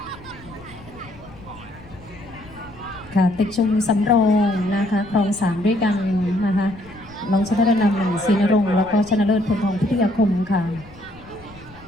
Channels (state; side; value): noise; left; rumble, 21 dB below the sound